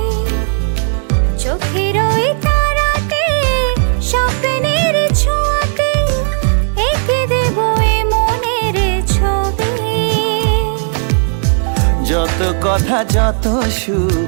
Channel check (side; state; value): left; silent; digital silence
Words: চোখের ওই তারাতে স্বপ্নের ছোঁয়াতে এঁকে দেব এ মনের ছবি। যত কথা যত সুর,